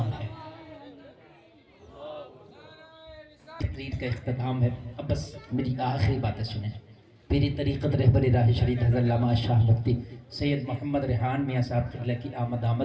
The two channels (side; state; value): both; identical; correlation 1.00